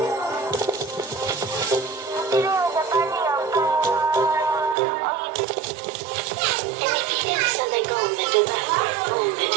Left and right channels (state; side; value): drops out; left; at 4.8 s